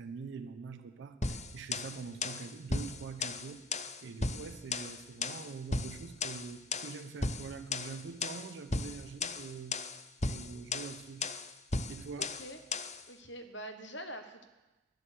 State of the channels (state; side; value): normal; both; correlation 0.45